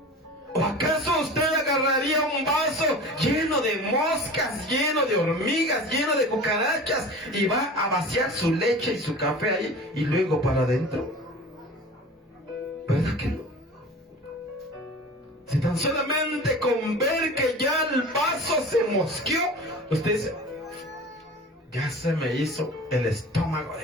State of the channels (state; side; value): normal; both; correlation 0.38